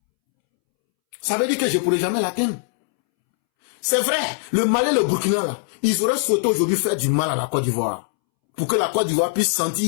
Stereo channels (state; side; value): silent; right; 65 dB below the other